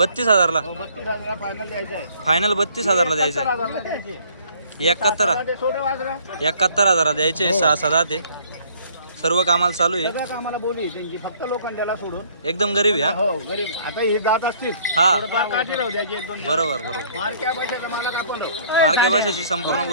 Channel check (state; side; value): inverted; both; correlation -0.59